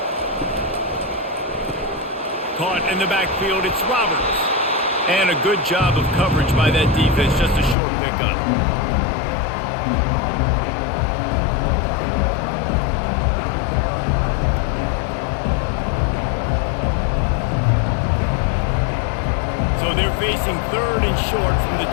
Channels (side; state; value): right; drops out; at 7.8 s